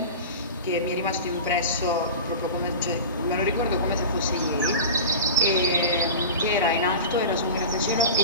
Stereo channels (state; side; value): inverted; both; correlation -0.30